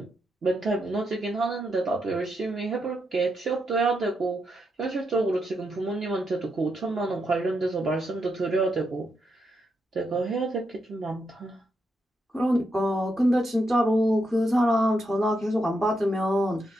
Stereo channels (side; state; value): both; normal; correlation 0.82